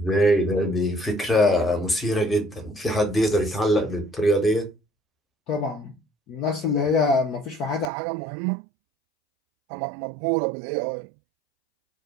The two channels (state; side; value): drops out; left; at 7.9 s